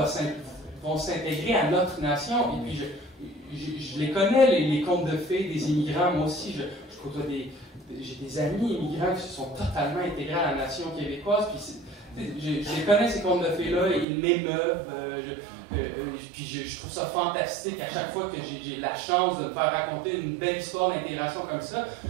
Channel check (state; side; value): drops out; left; at 14.1 s